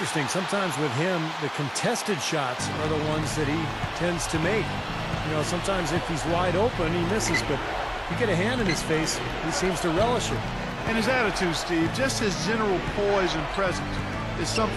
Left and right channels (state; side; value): identical; both; correlation 1.00